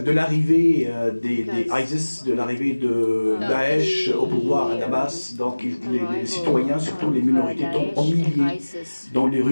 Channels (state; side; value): inverted; both; correlation -1.00